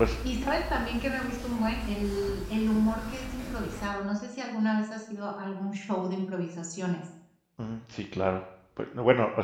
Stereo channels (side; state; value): both; identical; correlation 1.00